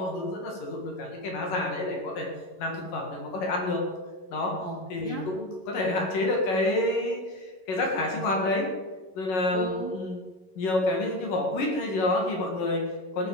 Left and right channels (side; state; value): right; late; 11 ms